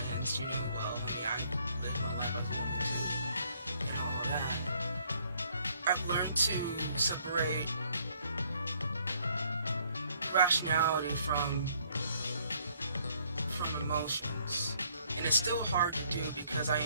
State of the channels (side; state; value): both; inverted; correlation -0.65